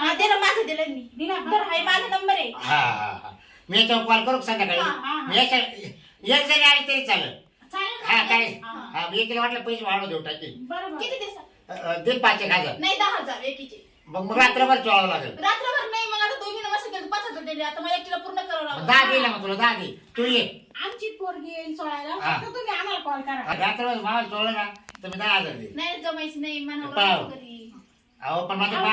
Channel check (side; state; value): both; identical; correlation 1.00